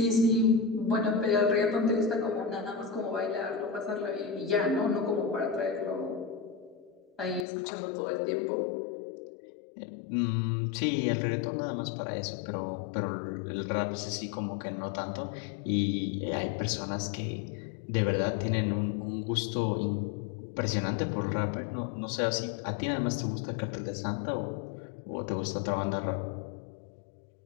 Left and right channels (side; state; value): right; drops out; at 7.5 s